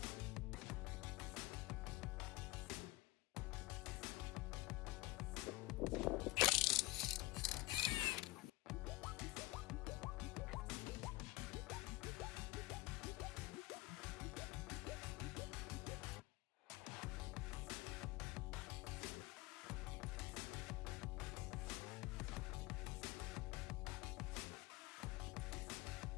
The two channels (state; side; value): quieter; right; 20.1 dB